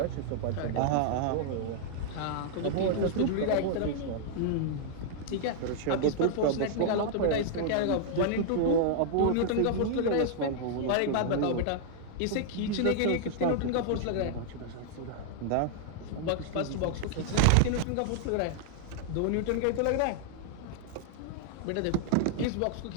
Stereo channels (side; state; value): both; different; correlation -0.01